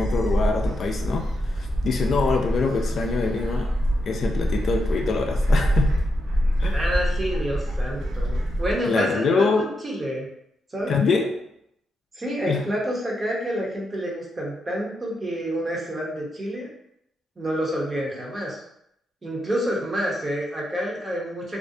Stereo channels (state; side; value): normal; both; correlation 0.84